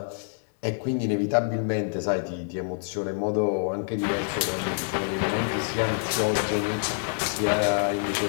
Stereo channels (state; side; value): silent; right; 58 dB below the other